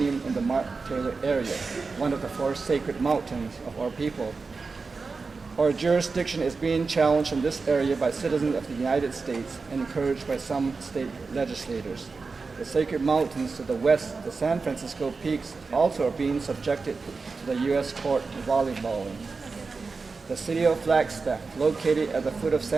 in the Mark Taylor area, one of the four sacred mountains of our people. Our jurisdiction is being challenged in this area by citizens of the United States and encouraged by some state legislators. The sacred mountains to the west, the San Francisco peaks, also are being subjected to the U.S. court volleyballing. The city of Flagstaff, located at the foot of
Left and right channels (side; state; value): left; quieter; 4.4 dB